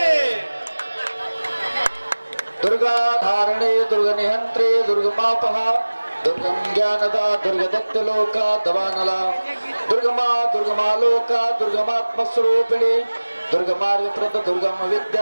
दुर्गा धारणे दुर्ग निहंत्रे दुर्गमापहा दुर्गम ज्ञानदा दुर्गदत्त लोका दवानला दुर्गमालोका दुर्गमात्मस्वरूपिणी दुर्गमार्गप्रद दुर्गम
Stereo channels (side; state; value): both; inverted; correlation -1.00